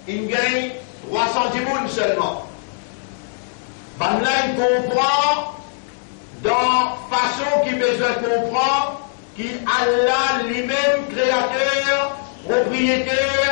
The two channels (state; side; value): silent; right; digital silence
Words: il gagne 310 mounes seulement. Ben là, il comprend, dans façon qu'il besoin de comprendre, qui Allah lui-même créateur,